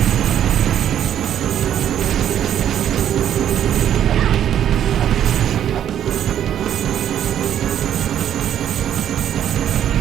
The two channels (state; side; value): quieter; left; 10.2 dB